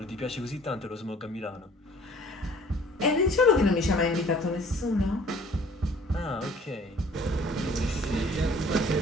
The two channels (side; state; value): both; normal; correlation 0.53